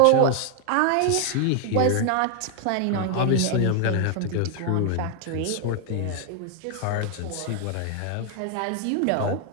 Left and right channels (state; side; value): different; both; correlation 0.00